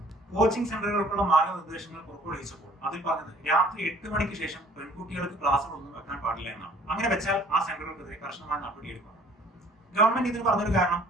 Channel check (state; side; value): normal; both; correlation 0.54